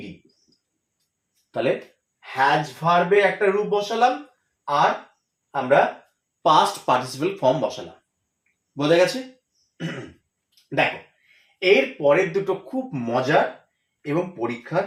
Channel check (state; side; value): identical; both; correlation 1.00